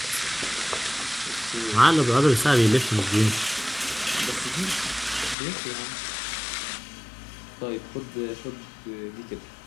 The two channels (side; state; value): right; drops out; at 5.4 s